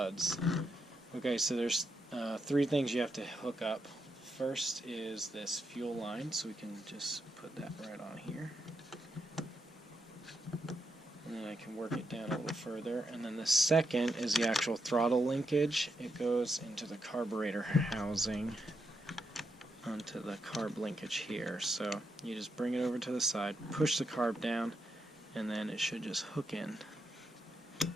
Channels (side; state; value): both; normal; correlation 0.82